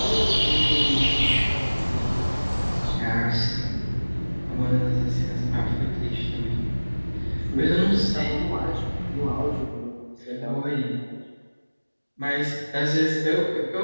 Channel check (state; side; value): inverted; both; correlation -1.00